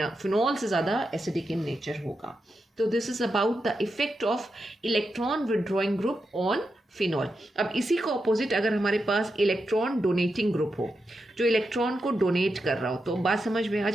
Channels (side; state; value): both; normal; correlation 0.87